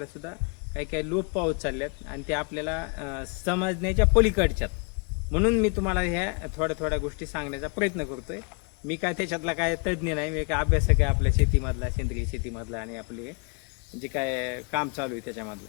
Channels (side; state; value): right; quieter; 36.3 dB